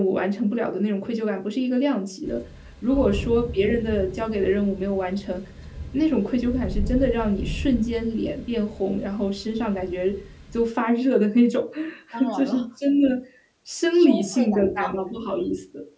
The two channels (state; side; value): identical; both; correlation 1.00